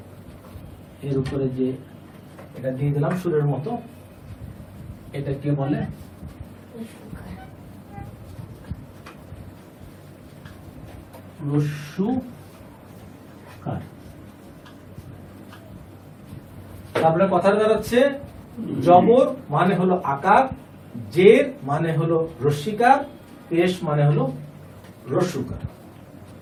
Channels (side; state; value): both; identical; correlation 1.00